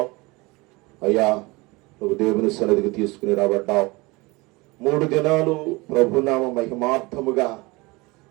అయ్యా, నువ్వు దేవుని సన్నిధికి తీసుకుని రాబడ్డావు. 3 దినాలు ప్రభునామ మహిమార్థముగా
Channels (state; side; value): quieter; left; 24.0 dB